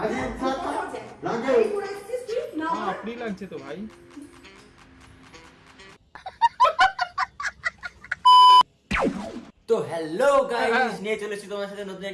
লাগে এই করে আসছিস তুই না আপনি লাগছে তো ভাই। তো হ্যালো গাইস, নিয়ে চলে এসেছি তোমার সাথে নতুন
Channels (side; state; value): both; identical; correlation 1.00